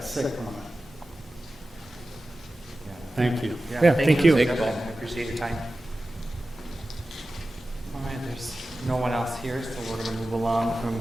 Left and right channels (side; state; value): both; normal; correlation 0.95